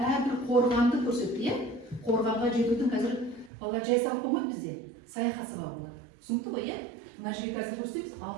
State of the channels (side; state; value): left; drops out; at 3.5 s